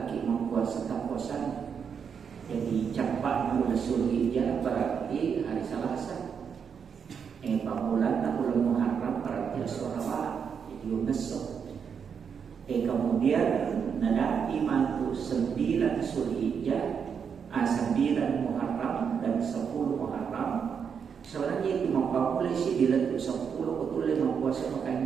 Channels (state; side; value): quieter; left; 6.9 dB